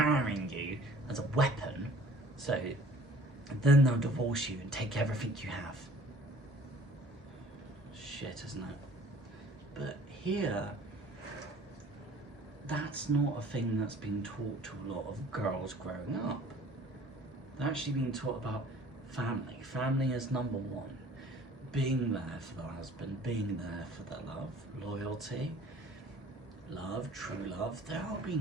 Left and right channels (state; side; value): normal; both; correlation 0.51